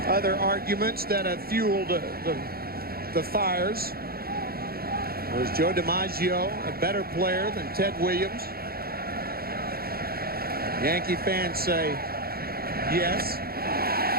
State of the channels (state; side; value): late; left; 0.44 ms